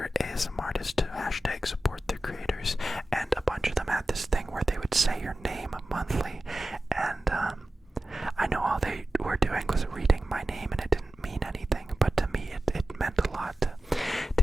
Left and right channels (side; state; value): both; normal; correlation 0.94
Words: ASM artists to hashtag support their creators, and a bunch of them had this thing where they would say your name monthly, and I know all they were doing was reading my name, and it didn't mean anything, but to me it meant a lot